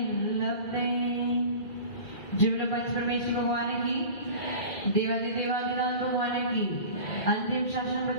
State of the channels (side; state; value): right; late; 2.0 ms